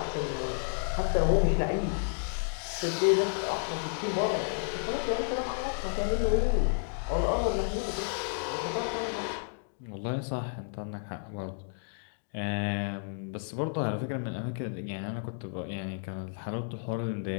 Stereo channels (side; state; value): right; silent; digital silence